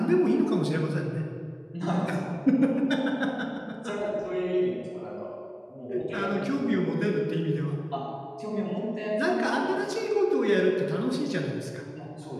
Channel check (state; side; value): identical; both; correlation 1.00